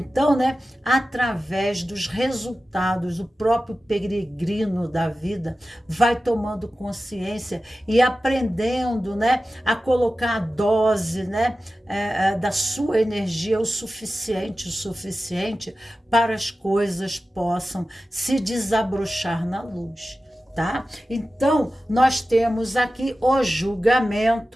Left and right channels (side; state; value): both; normal; correlation 0.94